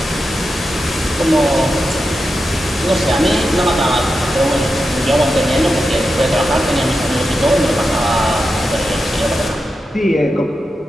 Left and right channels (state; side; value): normal; both; correlation 0.89